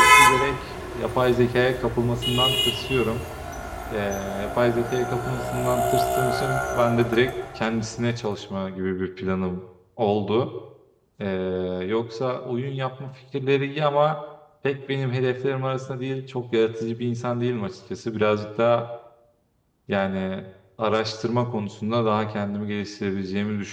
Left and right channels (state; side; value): identical; both; correlation 1.00